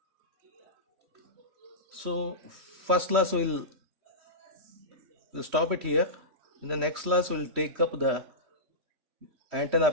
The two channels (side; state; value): left; late; 3.1 ms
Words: So first class we'll stop it here. In the next class we'll take up the antenna